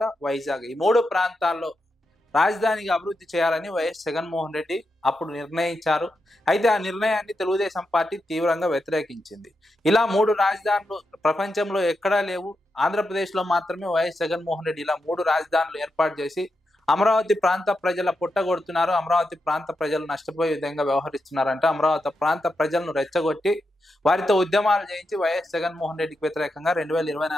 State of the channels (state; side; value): normal; both; correlation 0.86